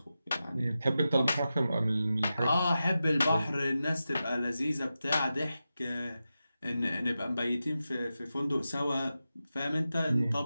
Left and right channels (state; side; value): inverted; both; correlation -0.92